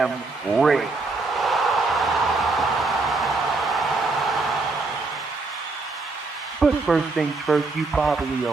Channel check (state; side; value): quieter; left; 3.6 dB